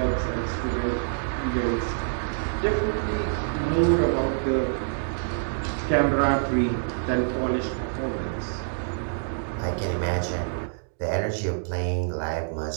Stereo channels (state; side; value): silent; left; digital silence